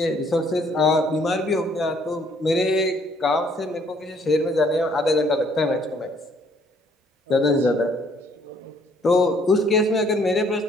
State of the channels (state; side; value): normal; both; correlation 0.63